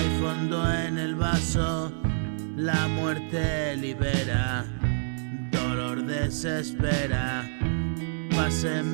fondo en el vaso, la muerte libera, dolor desespera. Pasé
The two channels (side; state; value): left; silent; digital silence